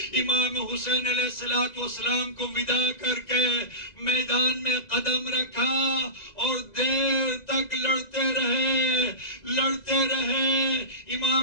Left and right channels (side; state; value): right; late; 2.0 ms